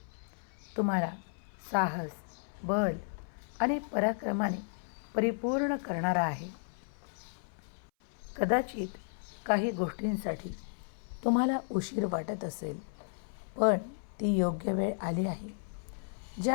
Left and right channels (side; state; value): right; silent; 55 dB below the other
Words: तुम्हाला साहस, बल आणि पराक्रमाने परिपूर्ण करणारा आहे. कदाचित काही गोष्टींसाठी तुम्हाला उशीर वाटत असेल, पण ती योग्य वेळ आली आहे